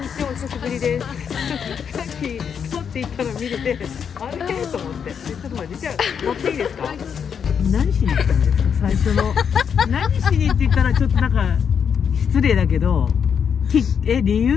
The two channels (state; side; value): quieter; right; 7.3 dB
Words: にちは、お久しぶりです。さっき撮っていったの見れて、あれと思って。ちょっと待って、じゃあ乗っていいですか？何しに来たんですか？最初の何しにって言ったらちょっとなんか失礼だけど、理